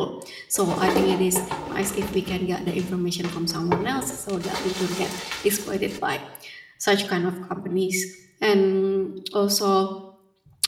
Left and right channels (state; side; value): identical; both; correlation 1.00